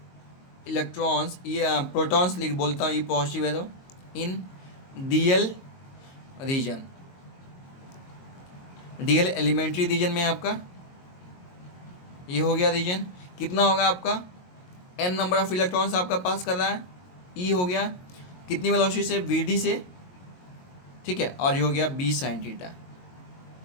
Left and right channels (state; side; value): late; right; 22 ms